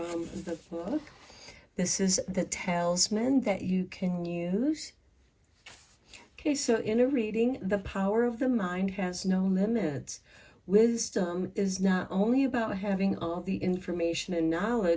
the book. This is the talisman that you can use. Okay, so in a reading, the power of the mind has no limits. Wisdom is not only about having all the information and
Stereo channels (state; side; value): identical; both; correlation 1.00